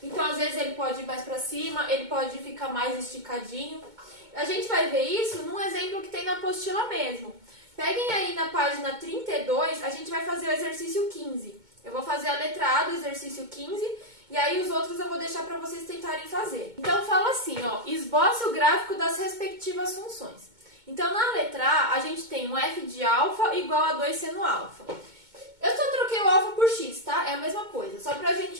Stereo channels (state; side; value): late; left; 2.2 ms